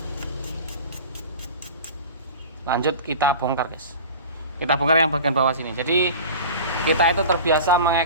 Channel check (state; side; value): inverted; both; correlation -0.36